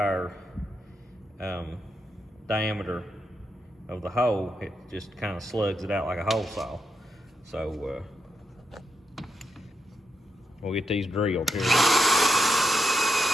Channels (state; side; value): normal; both; correlation 0.83